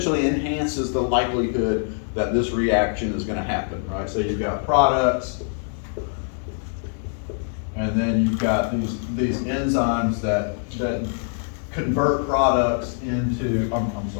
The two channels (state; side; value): silent; right; 58 dB below the other